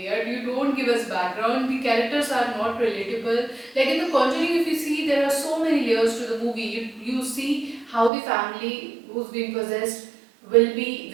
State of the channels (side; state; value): left; drops out; at 8.1 s